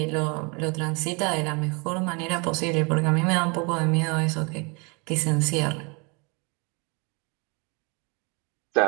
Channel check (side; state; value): left; quieter; 31.4 dB